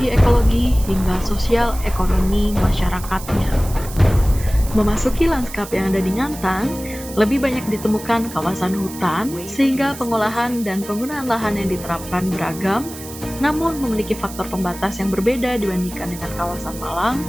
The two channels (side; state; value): right; noise; hiss, 14 dB below the sound